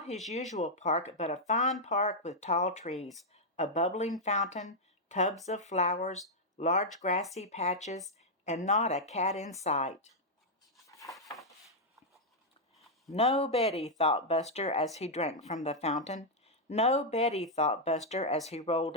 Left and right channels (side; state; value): both; normal; correlation -0.03